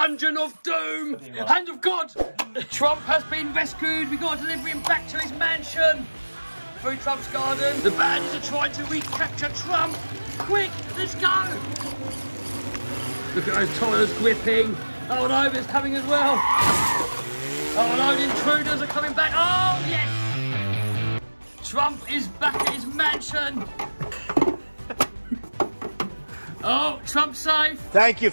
of Doom. Hand of God! Trump has been rescued. We've got to deliver him back to his mansion. Through Trump's garden. The bandits are trying to recapture Trump. Quick, let's go! Look at those tyres gripping. Oh no, it's coming as well. Oh no, the intruders are coming back. Oh, yes! Trump is back at his mansion. Oh, Trump's safe. Thank you,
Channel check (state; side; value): inverted; both; correlation -1.00